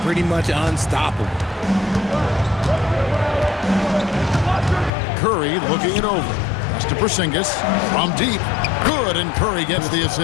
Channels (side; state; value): right; drops out; at 4.9 s